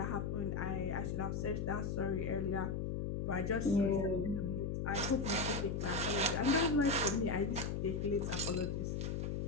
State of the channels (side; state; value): left; noise; hum, 1 dB below the sound